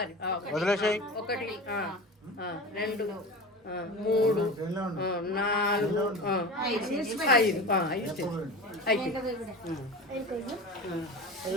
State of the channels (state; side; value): normal; both; correlation 0.31